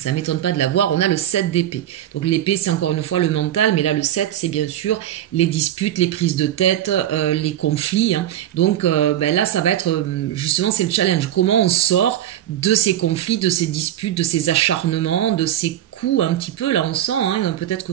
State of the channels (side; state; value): left; quieter; 11.9 dB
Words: ne m'étonne pas de l'avoir, on a le 7 d'épée. Donc l'épée, c'est encore une fois le mental, mais là le 7, c'est bien sûr les disputes, les prises de tête, les conflits. Hein. Donc là, ça va être, justement, c'est le challenge. Comment on sort de ces conflits, de ces disputes, de ces acharnements, de ces coups un petit peu, là on sent, hein, peut-être que